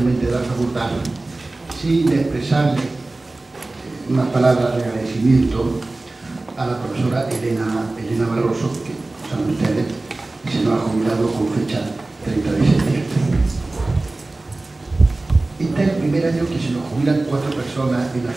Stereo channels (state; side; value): quieter; left; 3.0 dB